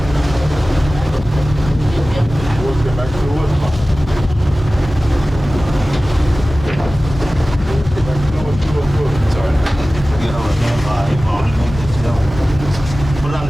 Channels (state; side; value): normal; both; correlation 0.97